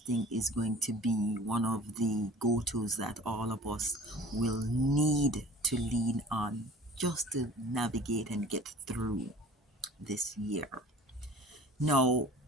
is going to be one of the go-tos that all of us will need to lean on just to navigate and get through this year. Now,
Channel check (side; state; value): both; normal; correlation 0.46